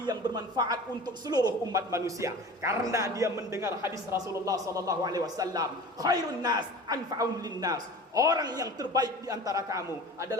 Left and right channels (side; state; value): both; normal; correlation 0.38